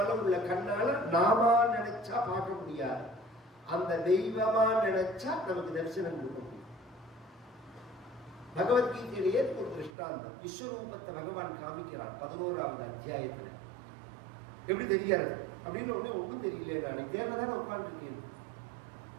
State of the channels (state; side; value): drops out; left; at 9.9 s